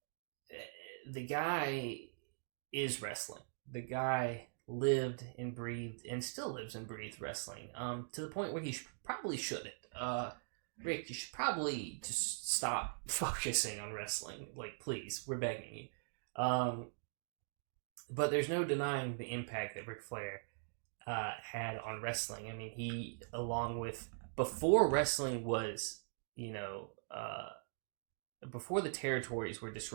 the guy is wrestling. The guy lived and breathed and still lives and breathes wrestling. To the point where he probably shouldn't. Rick, you should probably just stop focusing on wrestling. Like, please, we're begging you. But there's no denying the impact that Ric Flair had on wrestling. I mean, he, along with, before wrestling was, before the territories were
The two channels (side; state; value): left; silent; digital silence